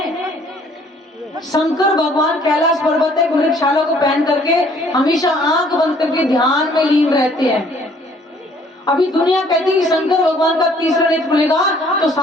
शंकर भगवान कैलाश पर्वत एक वृक्षशाला को पहन करके हमेशा आंख बंद करके ध्यान में लीन रहते हैं। अभी दुनिया कहती है कि शंकर भगवान का तीसरा नेत्र खुलेगा तो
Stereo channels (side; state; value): both; normal; correlation 0.59